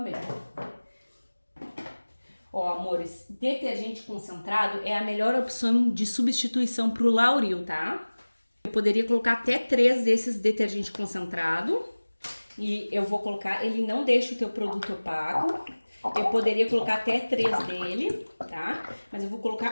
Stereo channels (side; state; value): both; inverted; correlation -1.00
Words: Ó, amores, detergente concentrado é a melhor opção de substituição pro lauril, tá? Eu poderia colocar até 3 desses detergente concentrado. E eu vou colocar, ele não deixa o teu produto opaco. Eu poderia colocar até 3 dele, tá? Mas eu vou